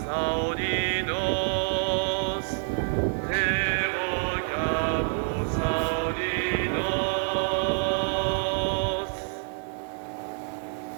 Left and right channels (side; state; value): left; silent; 60 dB below the other